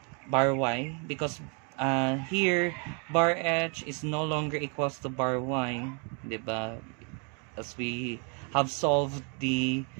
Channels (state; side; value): quieter; left; 36.5 dB